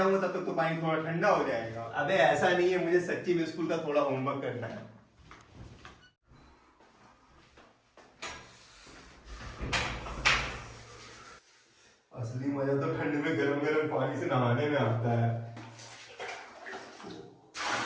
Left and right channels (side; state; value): both; identical; correlation 1.00